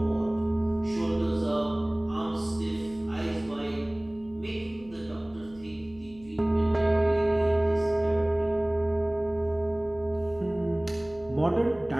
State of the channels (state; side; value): noise; left; hum, 24 dB below the sound